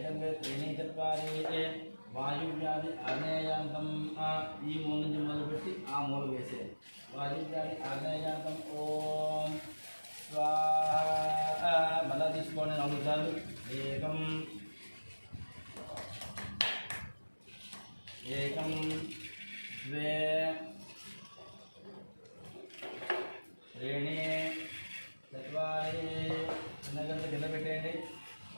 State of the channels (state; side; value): inverted; both; correlation -1.00